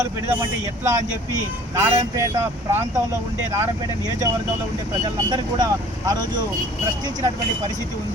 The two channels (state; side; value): normal; both; correlation 0.50